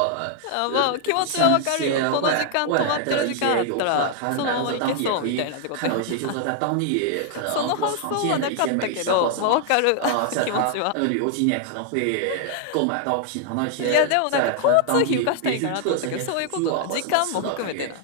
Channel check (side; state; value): both; different; correlation 0.00